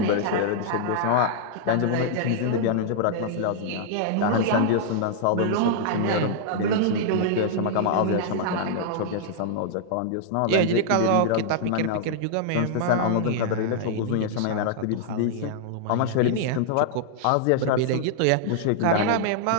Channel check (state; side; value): different; both; correlation -0.01